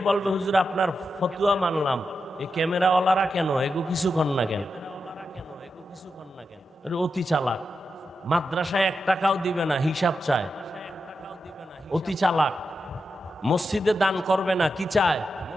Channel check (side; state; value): both; normal; correlation 0.88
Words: বলবে হুজুর আপনার ফতুয়া মানলাম, এই ক্যামেরাওয়ালারা কেন এগো কিছু কর না কেন? অতি চালাক। মাদ্রাসায় 1 টাকাও দিবে না, হিসাব চায়, অতি চালাক। মসজিদে দান করবে না, কি চায়?